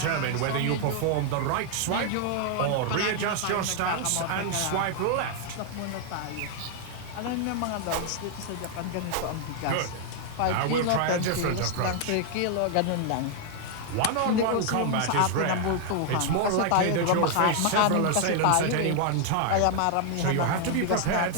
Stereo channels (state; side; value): different; both; correlation 0.00